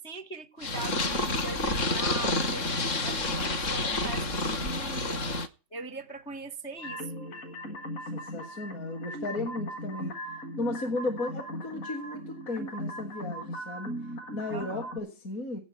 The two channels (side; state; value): right; late; 3.6 ms